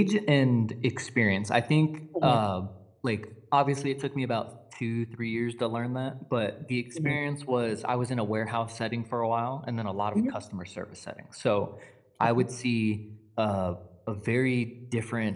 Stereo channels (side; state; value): both; identical; correlation 1.00